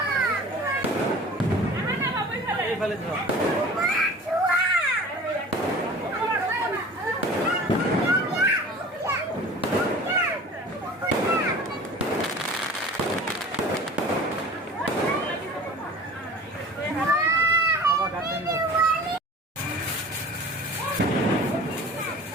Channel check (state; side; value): normal; both; correlation 0.42